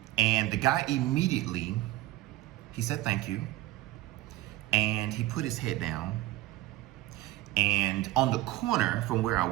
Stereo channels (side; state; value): left; quieter; 17.0 dB